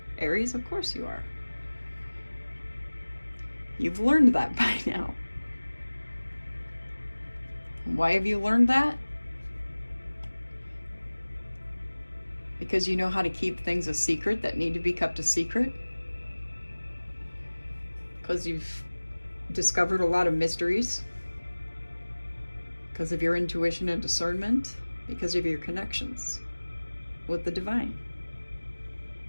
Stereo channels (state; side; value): inverted; both; correlation -1.00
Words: Aries, of course you are. You've learned that by now. Why have you learned that? Because you know how to keep things a secret that need to be kept a secret? Because you've discovered a lot of mysteries? Because of your intuition and discernment? Because of your connections with the divine?